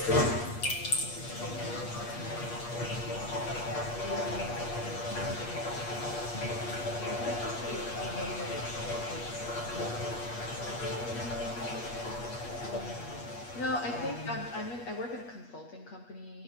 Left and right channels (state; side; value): late; right; 8.4 ms